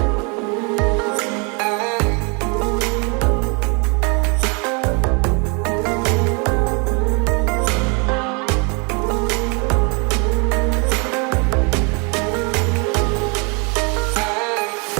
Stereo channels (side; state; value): left; quieter; 33.2 dB